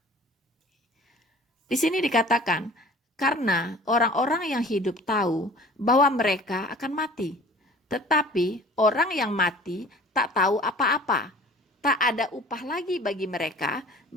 Di sini dikatakan, karena orang-orang yang hidup tahu bahwa mereka akan mati. Tetapi orang yang mati tak tahu apa-apa. Tak ada upah lagi bagi mereka,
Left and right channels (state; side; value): normal; both; correlation 0.46